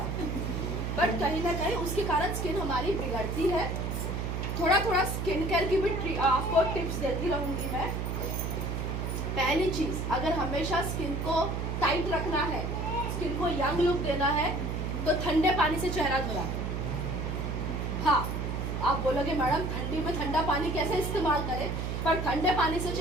बट कहीं ना कहीं उसके कारण स्किन हमारी बिगड़ती है। थोड़ा थोड़ा स्किन केयर की भी आपको टिप्स देती रहूंगी मैं। पहली चीज, अगर हमेशा स्किन को टाइट रखना है, स्किन को यंग लुक देना है, तो ठंडे पानी से चेहरा धोना है। हाँ, आप बोलोगे मैडम ठंडी में ठंडा पानी कैसे इस्तेमाल करें, पर ठंडे पानी से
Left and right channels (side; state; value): right; noise; hum, 2 dB below the sound